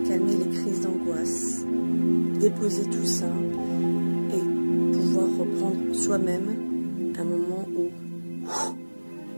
calmer les crises d'angoisse, déposer tout ça et pouvoir reprendre soi-même un moment où,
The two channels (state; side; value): inverted; both; correlation -1.00